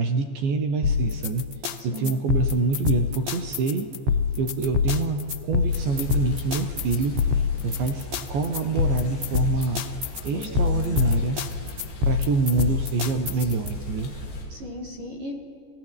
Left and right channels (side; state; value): left; late; 14 ms